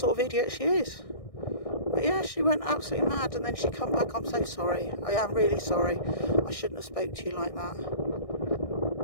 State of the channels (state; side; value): late; right; 1.6 ms